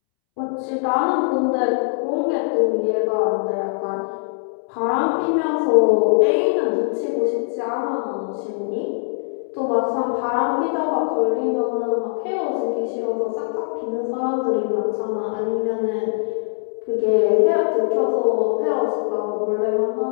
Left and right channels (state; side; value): silent; right; 65 dB below the other